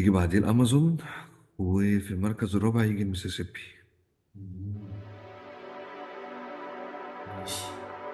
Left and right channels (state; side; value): identical; both; correlation 1.00